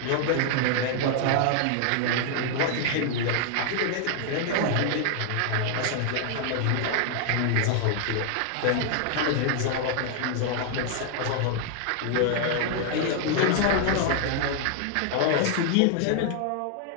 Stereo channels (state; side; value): different; both; correlation 0.00